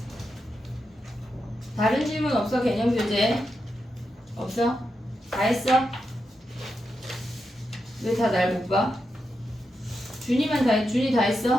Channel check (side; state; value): both; normal; correlation 0.87